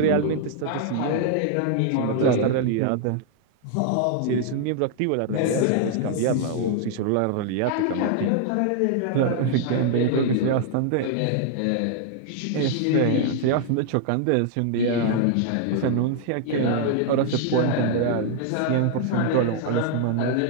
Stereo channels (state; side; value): different; both; correlation 0.00